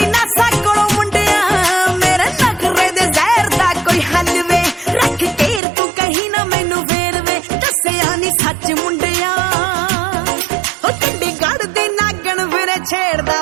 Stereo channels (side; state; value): left; drops out; at 5.6 s